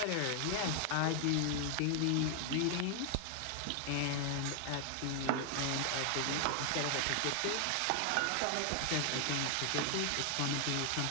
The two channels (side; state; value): both; different; correlation 0.00